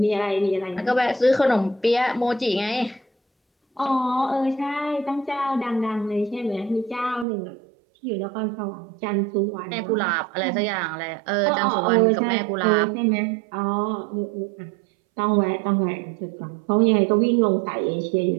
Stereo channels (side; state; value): left; drops out; at 7.2 s